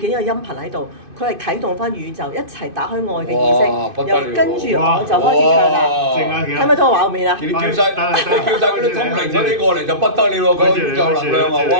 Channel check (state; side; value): late; left; 2.5 ms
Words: 一個音頻喺度，佢係啟動翻宇宙一齊打開愛嘅意識，又跟住我就開始唱啦，睇唔睇到個畫面啊？你叫晒嗰啲通靈嗰啲過嚟就不得了喎，個宇宙能量啊！